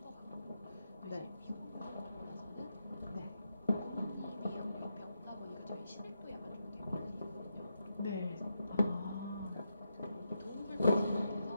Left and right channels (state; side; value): inverted; both; correlation -0.84